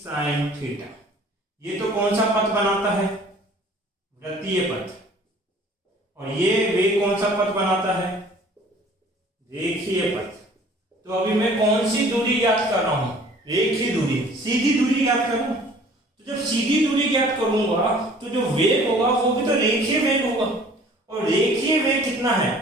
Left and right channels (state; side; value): normal; both; correlation 0.52